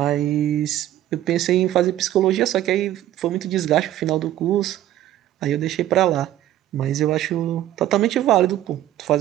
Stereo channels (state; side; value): quieter; left; 13.1 dB